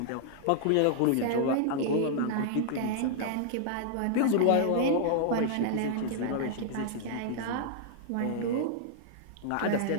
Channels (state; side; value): different; both; correlation -0.01